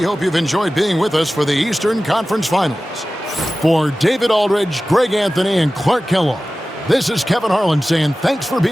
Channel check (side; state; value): both; normal; correlation 0.96